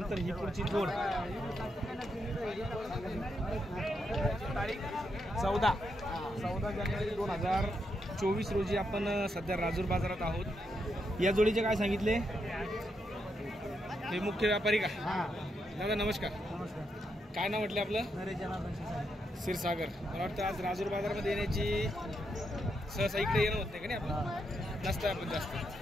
ही पुढची जोड 14 जानेवारी 2024 रोजी आपण सध्या राजूर बाजारात आहोत. या जोडीचे काय सांगितले? हे मुख्य व्यापारी का? दादा नमस्कार. काय नाव म्हटलं आपलं? क्षीरसागर. मला वाटतं आज राजूर बाजारामध्ये येण्याची सहसा इकडे येणं होत नाही का? नाही आपण नसतं आपण जास्त.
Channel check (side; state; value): both; normal; correlation 0.81